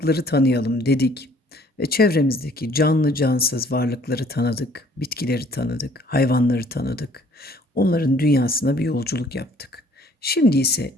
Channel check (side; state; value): both; normal; correlation 0.58